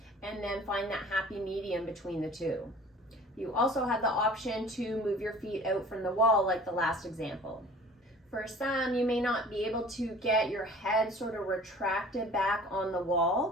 and then find that happy medium between the 2. You also have the option to move your feet out from the wall like the last example. For some, you may not be able to get your head sort of retracted back on the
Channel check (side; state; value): both; normal; correlation 0.46